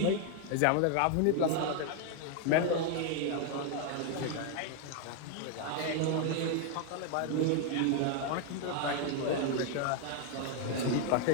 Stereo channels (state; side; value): different; both; correlation 0.01